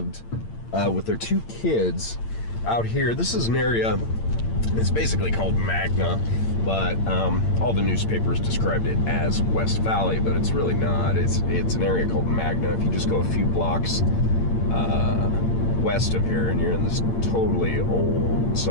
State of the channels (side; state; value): right; late; 8.8 ms